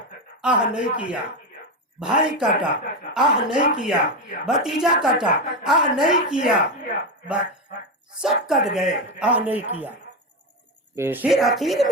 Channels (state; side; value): normal; both; correlation 0.13